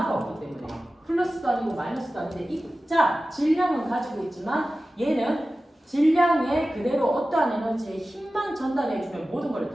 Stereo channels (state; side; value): normal; both; correlation 0.95